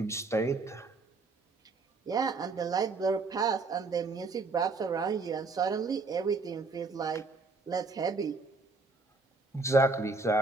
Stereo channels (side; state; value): left; quieter; 3.8 dB